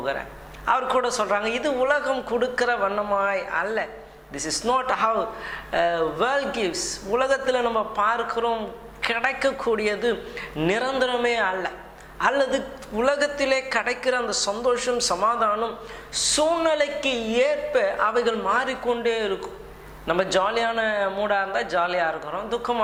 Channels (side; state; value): both; identical; correlation 1.00